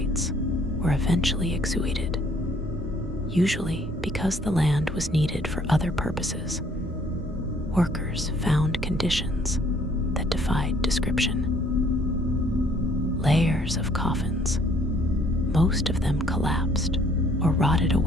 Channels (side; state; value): both; normal; correlation 0.62